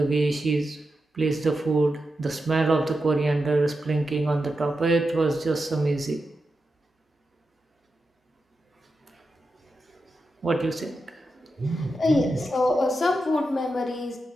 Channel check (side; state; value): both; normal; correlation 0.89